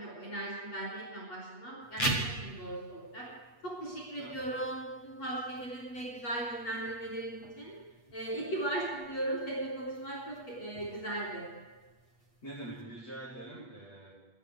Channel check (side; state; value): right; late; 8.3 ms